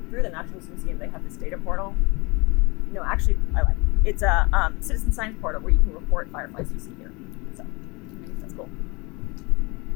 through the Natural History Museum, they have this data portal. No, actually, I like it. It's a citizen science portal where you can report fireflies you see here. So that's cool.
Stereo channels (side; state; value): right; quieter; 26.8 dB